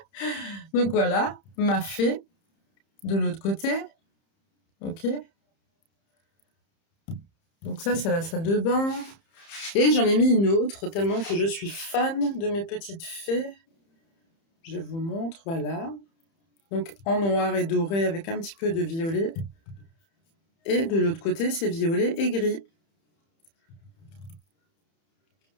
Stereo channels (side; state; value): right; late; 30 ms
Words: Donc voilà, ma fée de l'autre côté. Ok. Donc ça c'est la salle de bain. Et j'en ai mis une autre tellement que je suis fan de mes petites fées. Je vous montre, voilà. Donc en noir et doré avec un petit peu de violet. Et de l'autre côté c'est violet et gris.